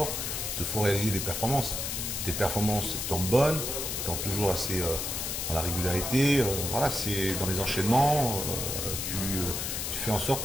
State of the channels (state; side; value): noise; left; hiss, 3 dB below the sound